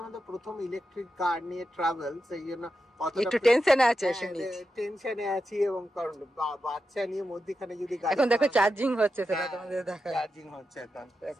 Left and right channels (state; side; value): normal; both; correlation 0.89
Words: আমাদের প্রথম ইলেকট্রিক কার নিয়ে ট্রাভেল, সেই জন্য একটু টেনশনে আছে, টেনশনে আছি। এবং কারণ বাচ্চা নিয়ে মধ্যখানে যদি এখন দেখো চার্জিং হচ্ছে, সেটা তোমাদের দেখা, চার্জিং হচ্ছে এখন।